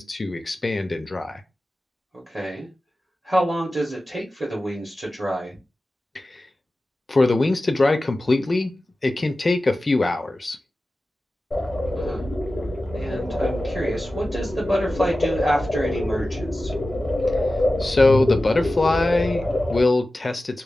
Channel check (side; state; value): both; normal; correlation 0.95